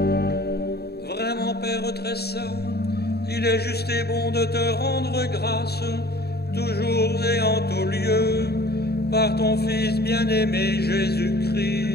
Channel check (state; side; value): late; right; 0.47 ms